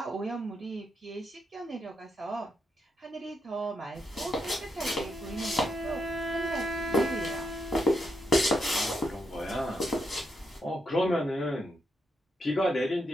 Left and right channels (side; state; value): both; normal; correlation 0.81